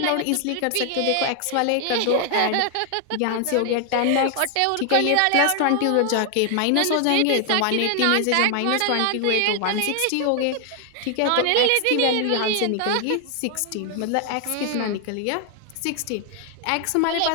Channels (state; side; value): different; both; correlation 0.00